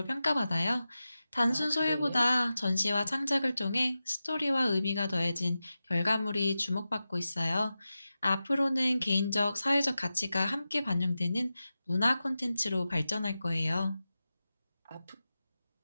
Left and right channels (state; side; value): inverted; both; correlation -0.93